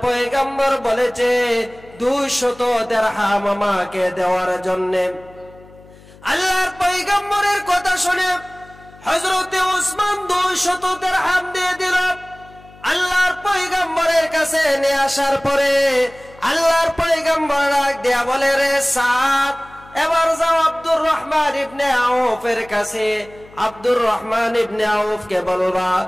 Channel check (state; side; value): noise; left; hum, 23 dB below the sound